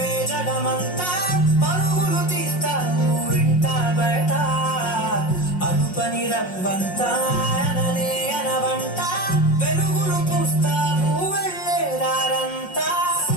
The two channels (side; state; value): right; late; 5.5 ms